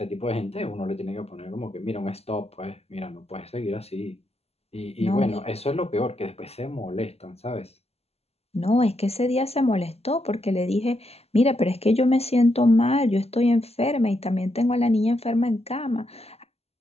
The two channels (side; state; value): right; late; 0.30 ms